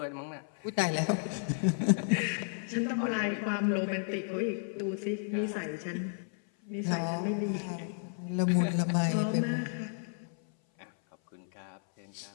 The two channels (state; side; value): silent; right; 56 dB below the other